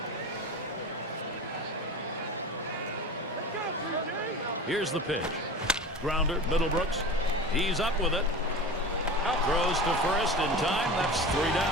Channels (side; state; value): both; normal; correlation 0.32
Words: Here's the pitch. Grounder, Middlebrooks. He's up with it. Throws to first in time. That's 3